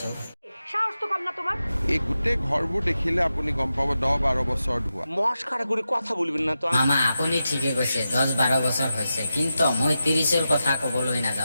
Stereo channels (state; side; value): inverted; both; correlation -0.90